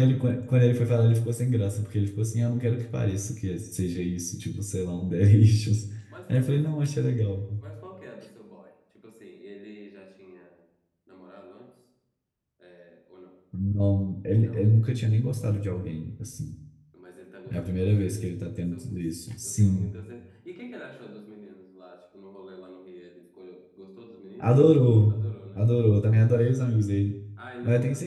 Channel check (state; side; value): identical; both; correlation 1.00